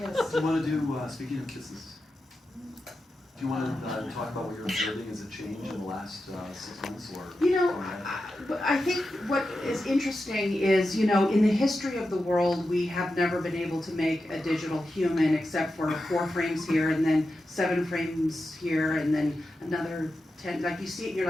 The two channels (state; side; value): normal; both; correlation 0.90